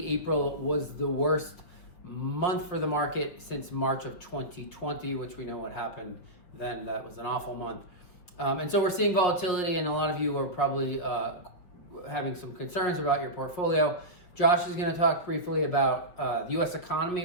April was the worst month for the market since March of 2020, which we know what happened then. That was an awful month. And so we're seeing volatility, and a lot of you are probably having some concerns about your portfolio. Josh is going to talk briefly about the U.S.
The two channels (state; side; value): late; right; 5.8 ms